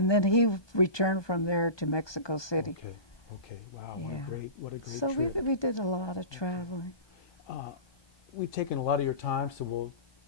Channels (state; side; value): late; right; 1.2 ms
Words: then he returned from there to Mexico City. Okay. Okay. Wow. Yeah. What a great So trip. we did a lot of traveling. We've taken a lot of your time, so we'll